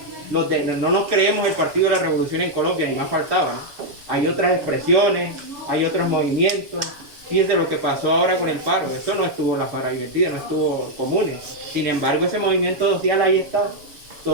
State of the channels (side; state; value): left; late; 7.1 ms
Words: no nos creemos el Partido de la Revolución en Colombia, ni más faltaba, ¿no? Hay otras expresiones, hay otros movimientos. Fíjense lo que pasó ahora con el paro, eso no estuvo en la Faradivertida, no estuvo Comunes. Sin embargo, ese movimiento social ahí está,